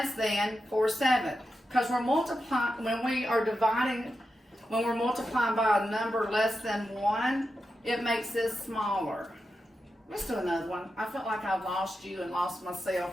than 4/7 because we're multiplying when we're multiplying by a number less than 1. It makes this smaller. Let's do another one. I felt like I've lost you and lost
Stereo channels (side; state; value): both; normal; correlation 0.89